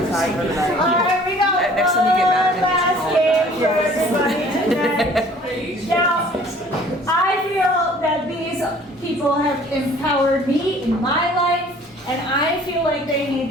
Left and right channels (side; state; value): both; normal; correlation 0.52